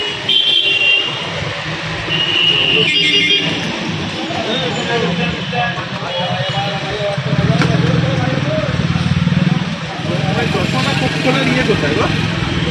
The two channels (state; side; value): identical; both; correlation 1.00